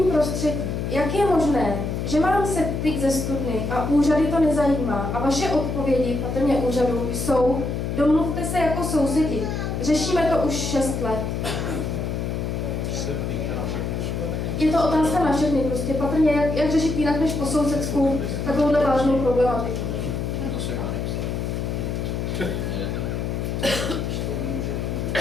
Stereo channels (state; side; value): noise; left; hum, 2 dB below the sound